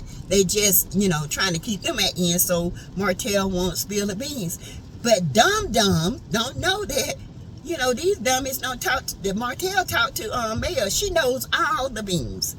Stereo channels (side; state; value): both; identical; correlation 1.00